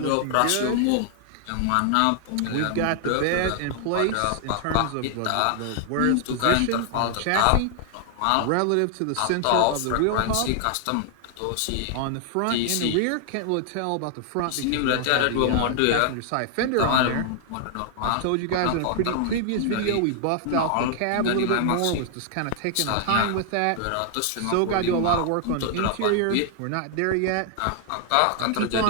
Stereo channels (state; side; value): different; both; correlation 0.00